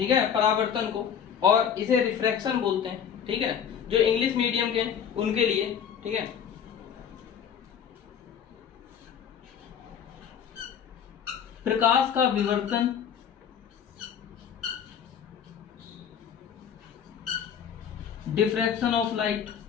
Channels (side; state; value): right; quieter; 8.1 dB